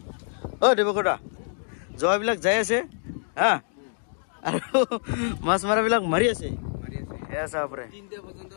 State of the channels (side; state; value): right; silent; 61 dB below the other